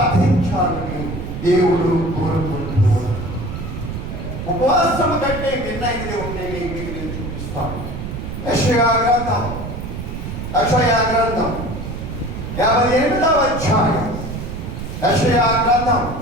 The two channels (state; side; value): noise; right; rumble, 7 dB below the sound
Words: దేవుడు కోరుకుంటున్నాడు. ఉపవాసం కంటే మిన్నైనది ఉంటే మీకు నేను చూపిస్తాను. యెషయా గ్రంథం 58వ అధ్యాయం. యెషయా గ్రంథం